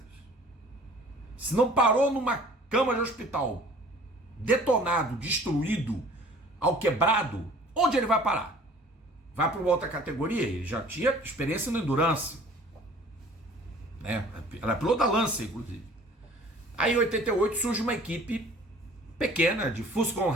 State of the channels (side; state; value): both; normal; correlation 0.49